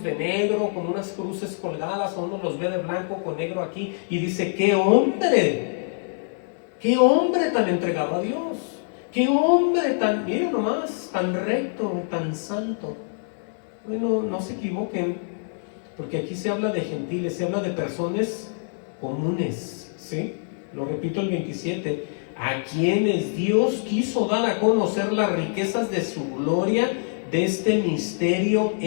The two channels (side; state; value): right; silent; digital silence